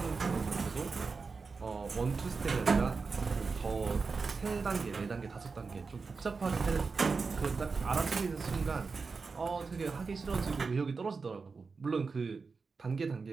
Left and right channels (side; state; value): left; quieter; 4.6 dB